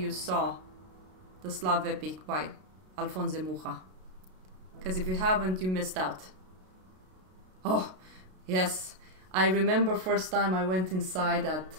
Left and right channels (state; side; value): late; left; 32 ms